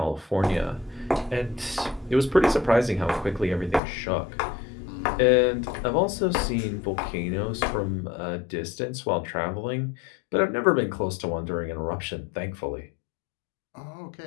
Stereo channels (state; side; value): drops out; right; at 3.8 s